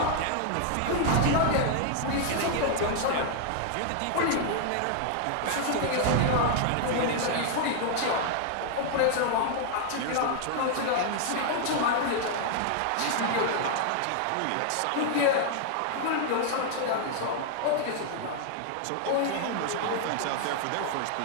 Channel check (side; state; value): both; different; correlation 0.00